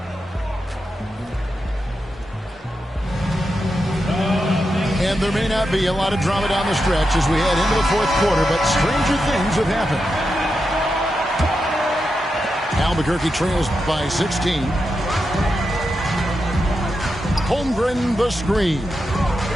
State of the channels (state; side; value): normal; both; correlation 0.87